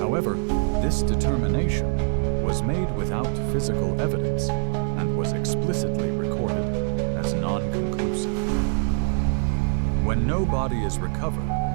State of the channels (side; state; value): left; silent; digital silence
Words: this determination was made without physical evidence and was explicitly recorded as non-conclusive. When no body is recovered,